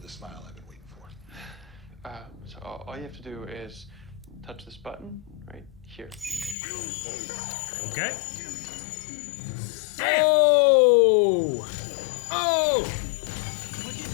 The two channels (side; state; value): right; drops out; at 6.6 s